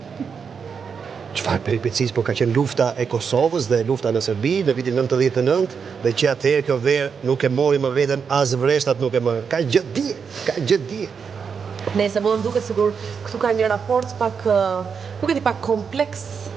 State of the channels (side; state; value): left; quieter; 6.2 dB